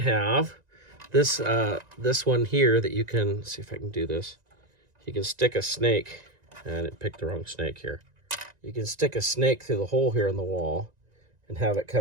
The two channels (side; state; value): left; late; 1.9 ms